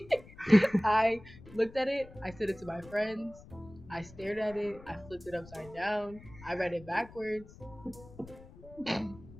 I looked at it, I sent it to my friends, I stared at it, I flipped it upside down, I read it backwards.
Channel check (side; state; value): left; noise; rumble, 19 dB below the sound